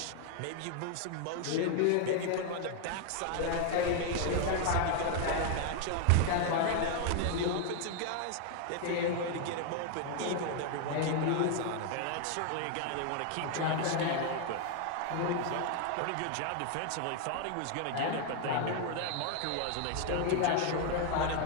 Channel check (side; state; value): both; different; correlation 0.01